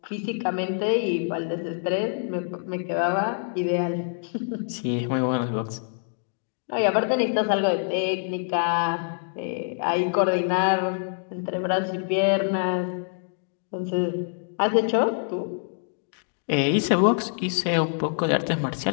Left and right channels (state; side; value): silent; right; digital silence